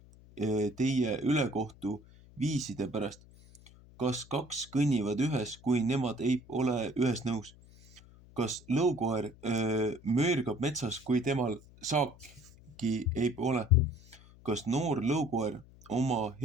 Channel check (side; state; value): left; noise; hum, 23 dB below the sound